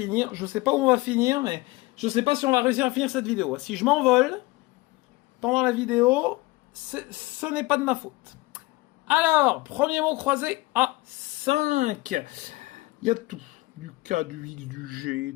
Je sais pas où on va finir, mais je sais pas si on va réussir à finir cette vidéo. Si je m'envole pendant la vidéo, ce n'est pas de ma faute. Alors, premier mot croisé à 5. Il y a tout. Du K, du X, du G,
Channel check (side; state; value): right; quieter; 21.5 dB